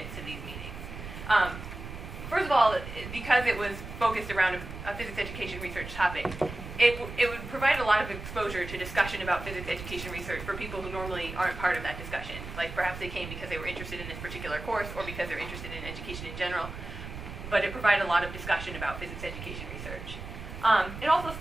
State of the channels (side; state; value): right; noise; rumble, 10 dB below the sound